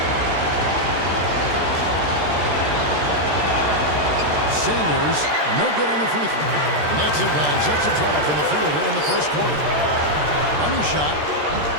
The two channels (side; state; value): left; late; 13 ms